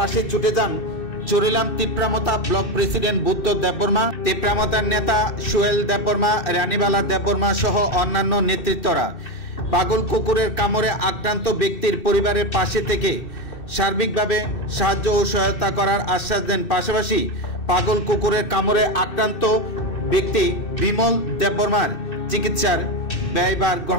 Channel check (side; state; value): right; late; 2.6 ms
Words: ছুটে যান চরিলাম তিপ্রামতা ব্লক প্রেসিডেন্ট বুদ্ধ দেববর্মা, তিপ্রামতার নেতা সোহেল দেববর্মা, রানীবালা দেববর্মা সহ অন্যান্য নেতৃত্বরা। পাগল কুকুরের কামড়ে আক্রান্ত ব্যক্তির পরিবারের পাশে থেকে সার্বিকভাবে সাহায্য ও সহায়তা করার আশ্বাস দেন। পাশাপাশি পাগল কুকুরের কামড়ে আক্রান্ত ব্যক্তি বিমল দেববর্মার চিকিৎসার ব্যয়ভার